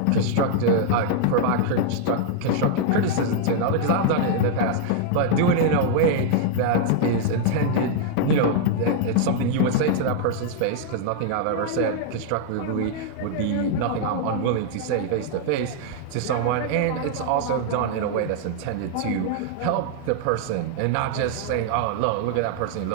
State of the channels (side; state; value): both; different; correlation 0.00